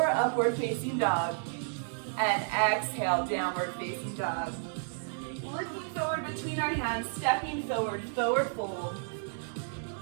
upward facing dog, and exhale, downward facing dog. Looking forward between our hands, stepping forward, forward fold.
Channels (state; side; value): silent; left; digital silence